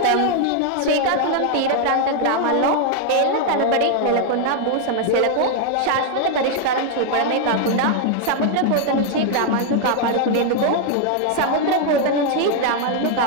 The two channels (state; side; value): different; both; correlation 0.00